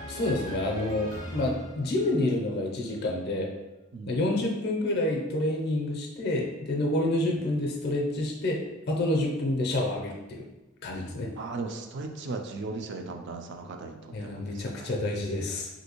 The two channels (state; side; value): normal; both; correlation 0.46